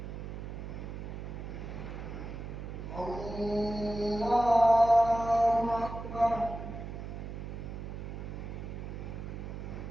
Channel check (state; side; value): noise; right; hum, 8 dB below the sound